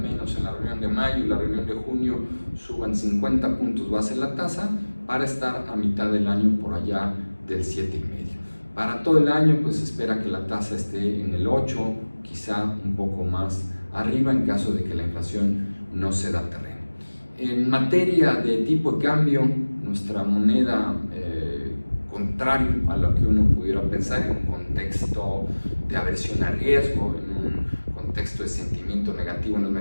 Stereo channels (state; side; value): inverted; both; correlation -1.00